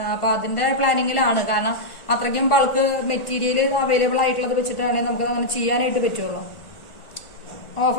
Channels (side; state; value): right; late; 1.3 ms